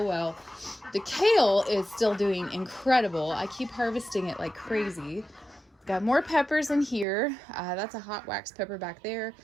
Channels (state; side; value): drops out; left; at 7.1 s